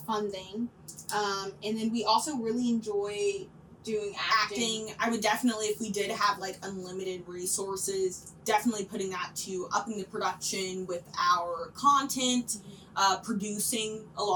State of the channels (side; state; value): both; identical; correlation 1.00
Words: thing. And then we also really enjoy doing acting. I would definitely, if we did have like unlimited resources, definitely putting that to upping the production with our content, producing a